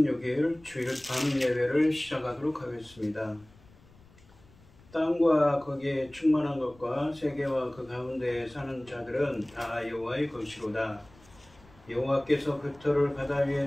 주일 밤 예배를 시작하도록 하겠습니다. 땅과 거기에 충만한 것과 세계와 그 가운데에 사는 자들은 다 여호와의 것이로다. 여호와께서 그 터를 바다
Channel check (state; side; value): noise; left; rumble, 26 dB below the sound